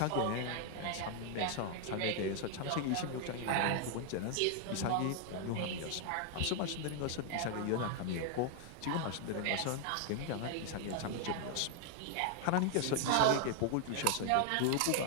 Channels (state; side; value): different; both; correlation 0.00